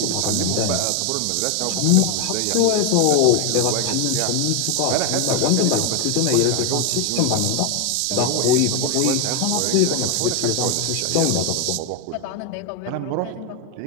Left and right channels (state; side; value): different; both; correlation 0.01